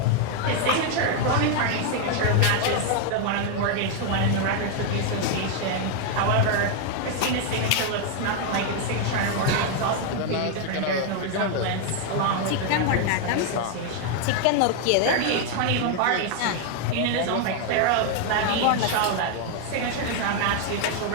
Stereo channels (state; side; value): different; both; correlation 0.01